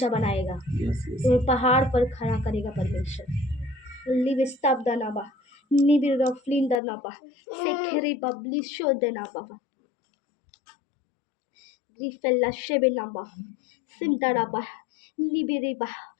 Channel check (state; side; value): drops out; right; at 6.8 s